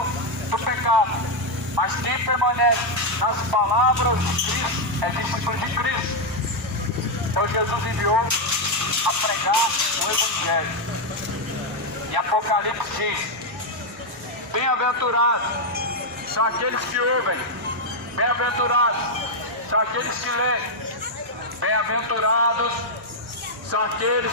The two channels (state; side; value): normal; both; correlation 0.00